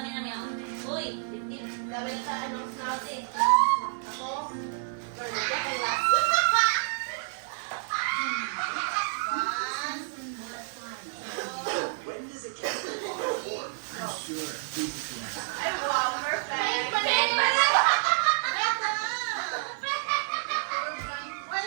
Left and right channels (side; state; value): left; silent; digital silence